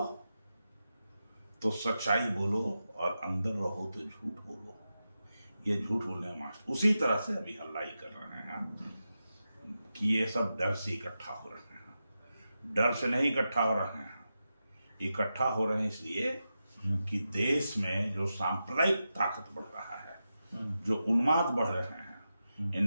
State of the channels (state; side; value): inverted; both; correlation -0.90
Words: तो सच्चाई बोलो और अंदर रहो तो झूठ बोलो। ये झूठ बोलने मास्टर उसी तरह से अभी हल्ला ही कर रहे हैं कि ये सब डर से इकट्ठा हो रहे हैं। डर से नहीं इकट्ठा हो रहे हैं, इकट्ठा हो रहे हैं इसलिए कि देश में जो सांप्रदायिक ताकत बढ़ रहा है, जो उन्माद बढ़ रहे हैं,